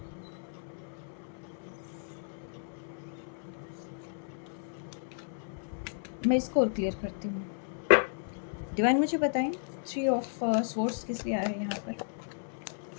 मैं इसको और क्लियर करती हूँ। डिवाइन मुझे बताएँ, थ्री ऑफ स्वॉर्ड्स किस लिए आया है यहाँ पर?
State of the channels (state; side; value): silent; right; 55 dB below the other